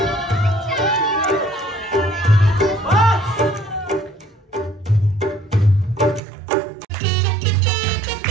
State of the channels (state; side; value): drops out; left; at 6.2 s